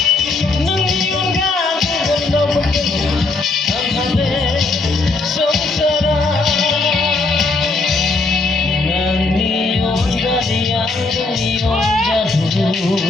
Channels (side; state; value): right; quieter; 3.6 dB